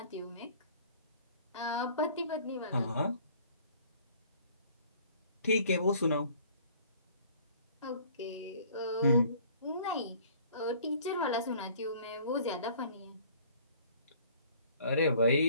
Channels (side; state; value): both; inverted; correlation -0.54